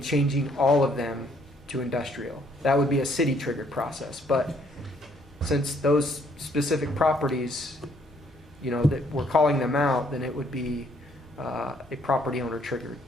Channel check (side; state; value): both; normal; correlation 0.66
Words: changing all of them to industrial. That would be a city-triggered process. But since those specific properties, that we're calling them out, then it would be a property owner triggered